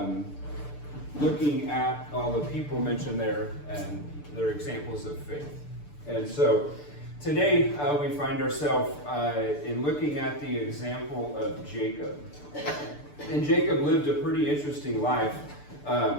looking at all the people mentioned there and their examples of faith. And so today we find ourselves in looking at the example of Jacob. And Jacob lived a pretty interesting life.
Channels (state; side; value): late; right; 6.8 ms